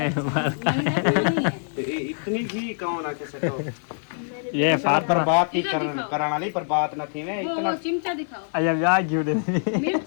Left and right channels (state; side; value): silent; right; digital silence